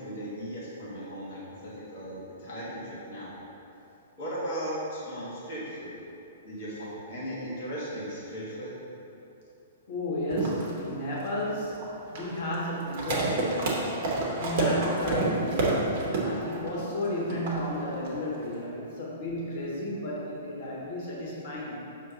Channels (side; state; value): both; inverted; correlation -0.31